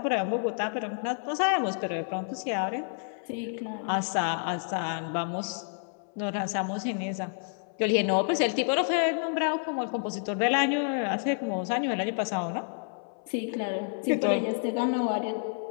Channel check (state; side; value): silent; right; 58 dB below the other